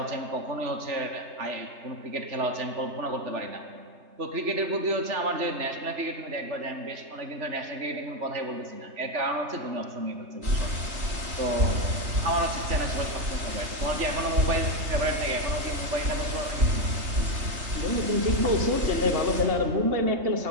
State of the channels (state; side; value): late; left; 3.3 ms